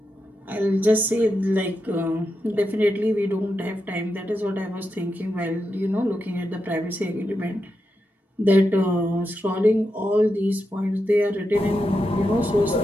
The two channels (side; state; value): both; normal; correlation 0.87